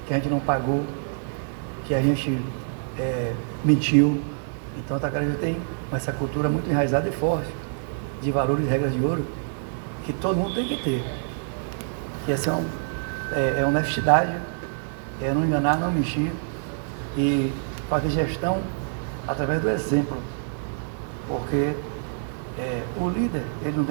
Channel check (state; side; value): silent; left; 61 dB below the other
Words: que a gente não pagou, que a gente mentiu. Então o atacarejo tem essa cultura muito enraizada e forte, de valores e regras de ouro, que todo mundo tem que ter. Que essa é honestidade, é não enganar, não mentir, e fazer gestão através do exemplo. Porque o líder, ele não